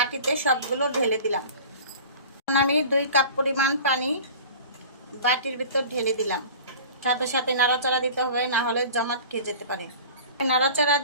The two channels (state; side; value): inverted; both; correlation -0.40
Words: সবগুলো ঢেলে দিলাম। আমি 2 কাপ পরিমাণ পানি বাটির ভিতর ঢেলে দিলাম। সাথে সাথে নাড়াচাড়া দিতে হবে, না হলে জমাট খেয়ে যেতে পারে। নাড়াচাড়া